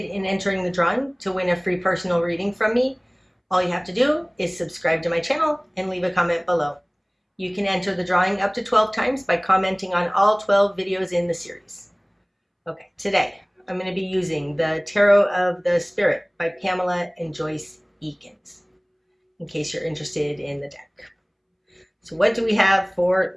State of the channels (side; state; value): both; identical; correlation 1.00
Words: in entering the drawing to win a free personal reading from me, all you have to do is subscribe to my channel and leave a comment below. You can enter the drawing up to 12 times by commenting on all 12 videos in the series. Okay, today I'm going to be using the Tarot of the Spirit by Pamela and Joyce Eakins, in case you're interested in the deck. So what do we have for